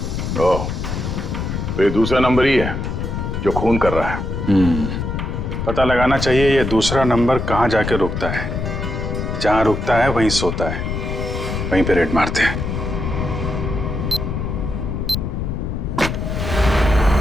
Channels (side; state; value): left; noise; rumble, 3 dB below the sound